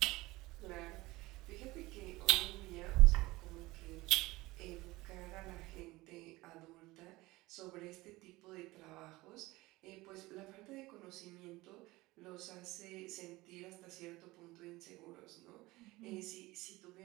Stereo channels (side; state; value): left; quieter; 20.2 dB